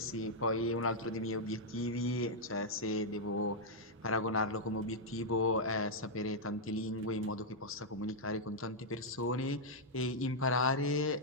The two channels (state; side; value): normal; both; correlation -0.05